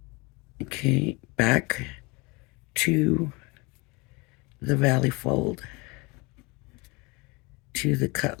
Okay, back to the valley fold, to the cut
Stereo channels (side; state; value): right; quieter; 27.0 dB